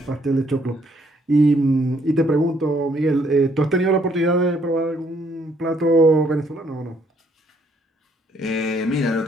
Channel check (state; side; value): normal; both; correlation 0.68